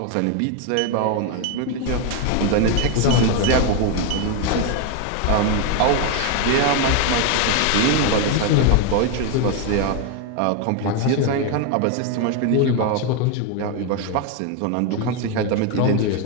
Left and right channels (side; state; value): both; different; correlation 0.01